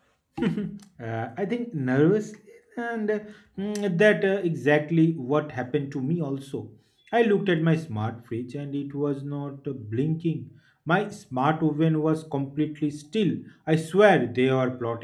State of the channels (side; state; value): both; identical; correlation 1.00